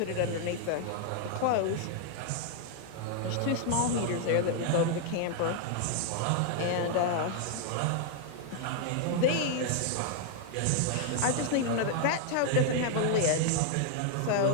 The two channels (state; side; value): different; both; correlation 0.00